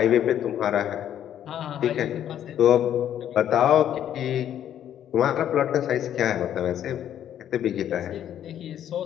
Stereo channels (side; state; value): right; quieter; 10.5 dB